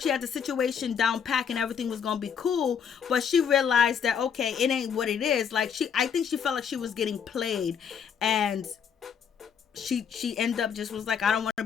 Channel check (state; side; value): quieter; right; 7.4 dB